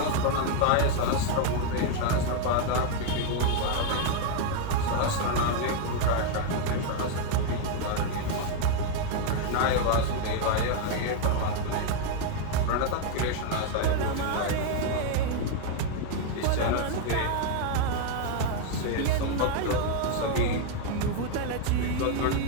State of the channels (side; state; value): both; different; correlation 0.00